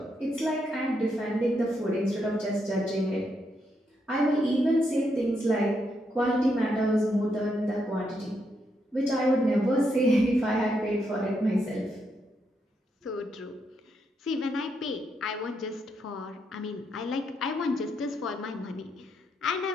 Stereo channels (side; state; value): both; normal; correlation 0.79